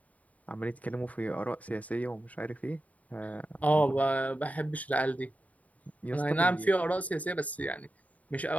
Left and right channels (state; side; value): late; right; 0.071 ms